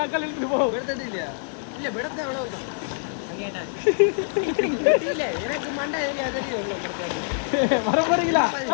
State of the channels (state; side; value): silent; right; digital silence